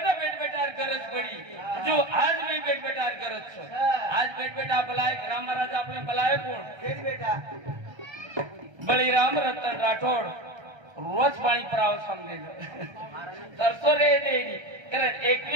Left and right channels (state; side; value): late; left; 1.3 ms